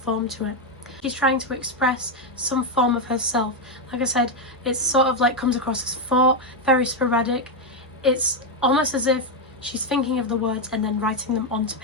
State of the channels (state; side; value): normal; both; correlation 0.04